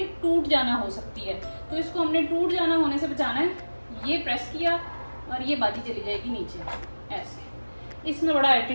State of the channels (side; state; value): both; inverted; correlation -1.00